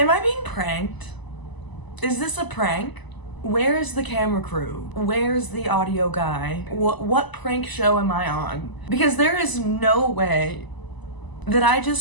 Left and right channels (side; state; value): right; late; 1.0 ms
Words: I being pranked? Is this a prank? Where is the camera crew? Where's the audio guy? What prank show am I on? Because there is no way that I